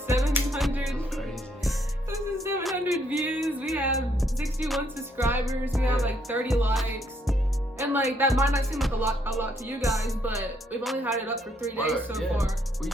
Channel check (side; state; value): both; normal; correlation 0.71